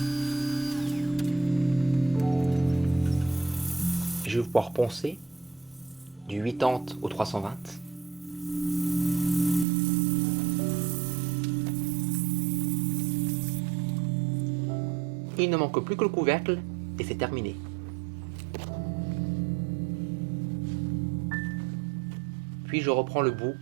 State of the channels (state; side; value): drops out; left; at 9.7 s